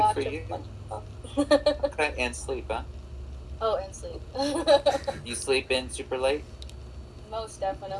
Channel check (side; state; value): both; identical; correlation 1.00